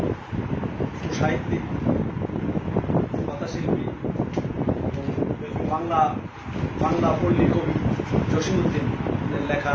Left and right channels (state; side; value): identical; both; correlation 1.00